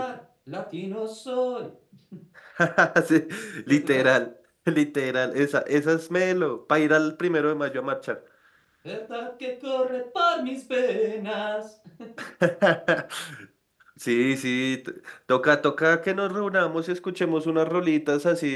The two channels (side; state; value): both; identical; correlation 1.00